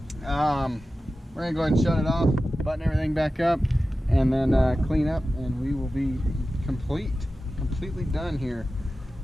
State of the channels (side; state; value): both; normal; correlation 0.94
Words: We're gonna go ahead and shut it off, button everything back up, and then clean up, and we will be completely done here.